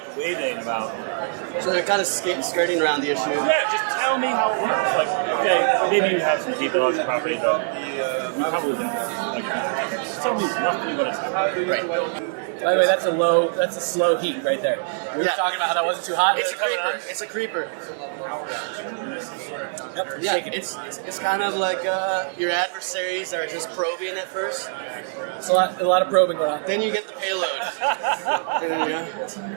waving about. So they're kind of skirting around the issue. Yeah, just tell me how it works. Like, okay, maybe you have some deep intellectual property, but you probably don't. Like, just tell me roughly what it's like. Right. By the way, that's a slow heat right there. We were talking about how that wasn't too hot. It's a creeper. It's a creeper. Yep, Yeah, shaking. it's kind of like your adversaries are just probing at first. It's a lot of probing going on. Then you get the payload.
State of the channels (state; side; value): silent; left; digital silence